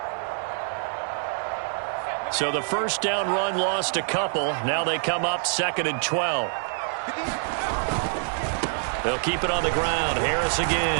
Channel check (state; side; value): silent; left; 56 dB below the other